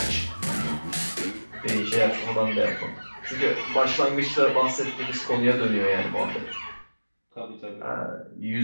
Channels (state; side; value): inverted; both; correlation -1.00